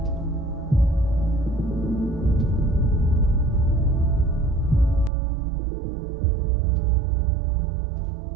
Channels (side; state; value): left; drops out; at 5.1 s